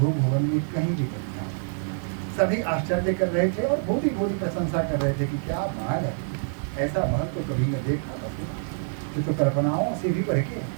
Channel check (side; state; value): left; silent; 61 dB below the other